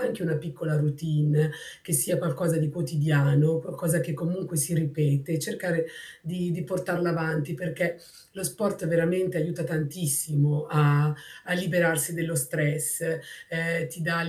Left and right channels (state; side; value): identical; both; correlation 1.00